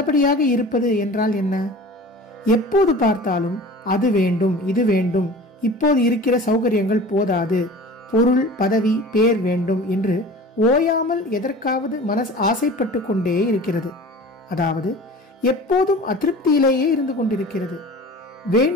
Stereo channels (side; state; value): both; normal; correlation 0.40